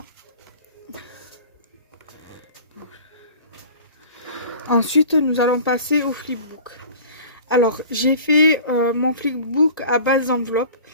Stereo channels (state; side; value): inverted; both; correlation -0.42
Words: Ensuite nous allons passer au flipbook. Alors j'ai fait mon flipbook à base d'enveloppes,